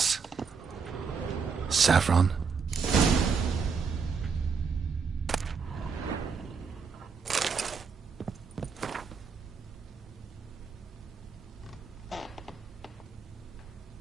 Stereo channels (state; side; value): quieter; left; 5.6 dB